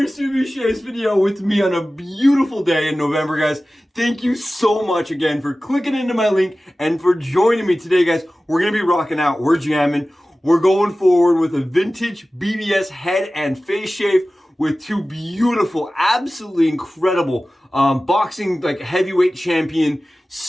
Subi Shaves video with me on a beautiful day in November, guys. Thank you so much again for clicking into my link and for joining me today, guys. We're gonna be rocking out, we're jamming, we're going forward with a vintage BBS head and face shave with two beautiful, absolutely incredible boxing like heavyweight champion,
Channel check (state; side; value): normal; both; correlation 0.96